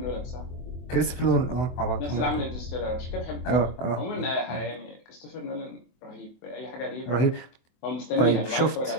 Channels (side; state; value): right; late; 24 ms